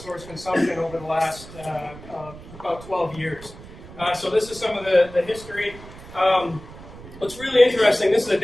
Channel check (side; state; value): right; noise; rumble, 17 dB below the sound